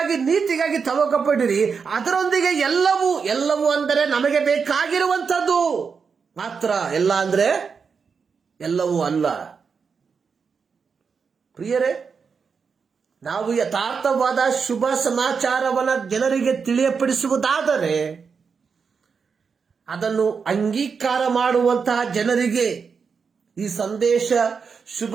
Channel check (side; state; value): left; quieter; 5.7 dB